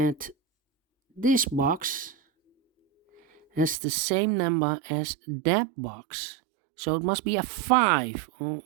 this box has the same number as that box. So it must be a 5. All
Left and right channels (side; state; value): left; drops out; at 3.8 s